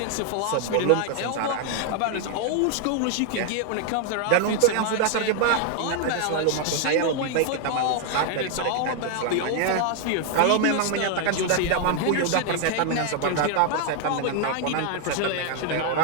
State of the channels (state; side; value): different; both; correlation 0.00